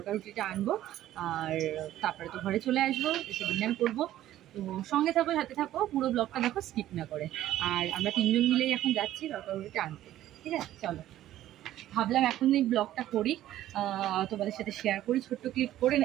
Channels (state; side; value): quieter; left; 13.4 dB